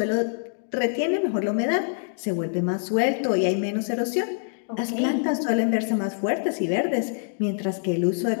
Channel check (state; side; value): silent; right; digital silence